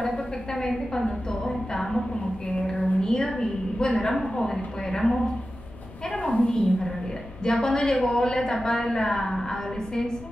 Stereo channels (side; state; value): left; noise; rumble, 18 dB below the sound